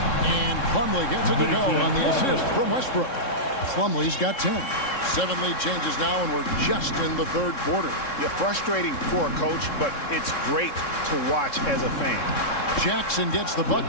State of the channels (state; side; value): late; right; 3.7 ms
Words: And Plumlee gets it to go on the assist from Westbrook. Plumlee's got 10. 7 lead changes now, and we're just in the third quarter. You're frustrating for a coach, but it's great to watch as a fan. Jackson gets the